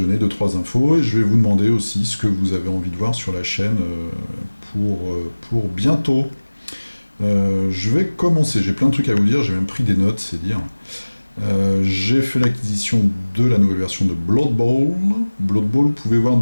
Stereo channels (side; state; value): both; inverted; correlation -1.00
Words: 2-3 infos et je vais vous demander aussi ce que vous avez envie de voir sur la chaîne pour bientôt. Je vais commencer, j'ai plein de trucs à vous dire, j'ai même pris des notes, c'est dire. J'ai fait l'acquisition de la nouvelle version de Blood Bowl. Blood Bowl, vous pouvez voir